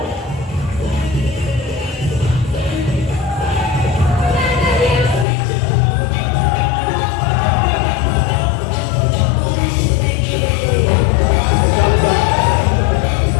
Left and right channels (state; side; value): drops out; right; at 5.2 s